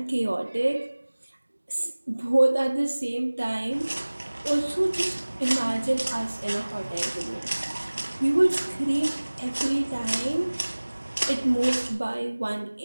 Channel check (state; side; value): inverted; both; correlation -1.00